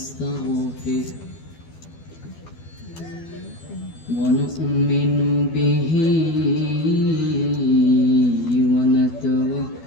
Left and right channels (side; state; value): right; late; 12 ms